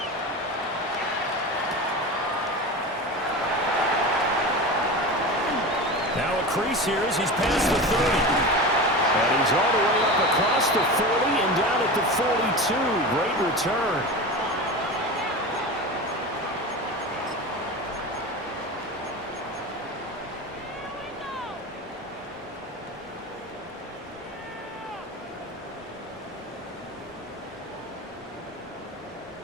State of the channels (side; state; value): both; normal; correlation 0.28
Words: Now a crease here as he's past the 30. And he's all the way up across the 40 and down at the 42. Great return.